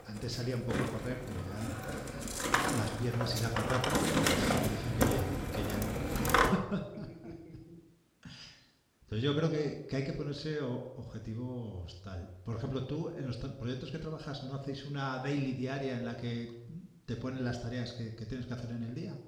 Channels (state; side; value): identical; both; correlation 1.00